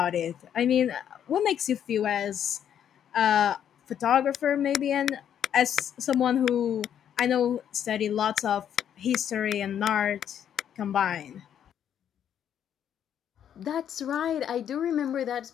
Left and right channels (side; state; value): right; quieter; 9.4 dB